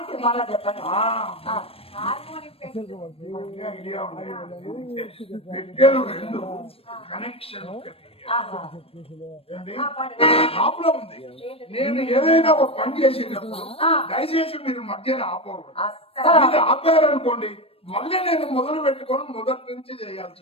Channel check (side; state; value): right; late; 0.28 ms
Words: మళ్ళా చెప్పండి. ఐడియా ఉన్నాయి. పెట్టాను 2 కనెక్షన్ ప్రాబ్లం ఉంది. నేను ఏదైనా ఒక పని చేసేటప్పుడు దయచేసి మీరు మధ్యన ఆపకూడదు. మీరు ఆపారనుకోండి మళ్ళీ నేను మొదలు పెట్టుకొని మొదటి నుంచి చేయాల్సి